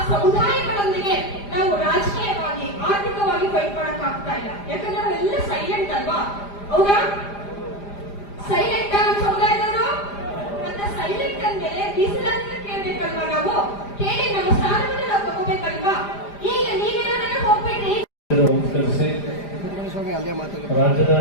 ಸಮುದಾಯಗಳೊಂದಿಗೆ ನಾವು ರಾಜಕೀಯವಾಗಿ ಆರ್ಥಿಕವಾಗಿ ಫೈಟ್ ಮಾಡಕ್ ಆಗ್ತಾ ಇಲ್ಲ. ಯಾಕಂದ್ರೆ ನಾವೆಲ್ಲ ಸೈಲೆಂಟ್ ಅಲ್ವಾ? ಹೌದಾ? ಸೈಲೆಂಟ್ ನಮ್ಮ ಸಮುದಾಯದವರು. ಮತ್ತೆ ಸೈಲೆಂಟ್ ಅಂದ್ಮೇಲೆ ಮೀಸಲಾತಿನ ಕೇಳ್ಬೇಕಲ್ವಾ? ನಾವು ಕೇಳಿ ನಮ್ಮ ಸ್ಥಾನವನ್ನು ನಾವು ತಗೋಬೇಕಲ್ವಾ? ಈಗ ನೀವೇನಾದ್ರೆ ಹೋಗ್ಬೇಡ್ರಿ.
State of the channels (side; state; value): right; late; 5.0 ms